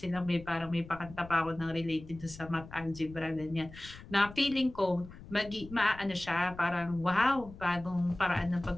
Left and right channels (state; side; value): noise; left; rumble, 17 dB below the sound